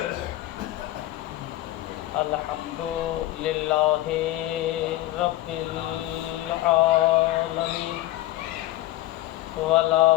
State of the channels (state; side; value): quieter; right; 15.9 dB